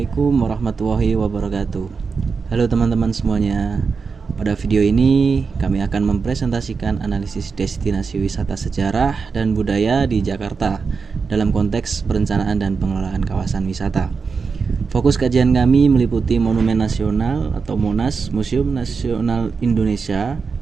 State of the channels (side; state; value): left; quieter; 5.1 dB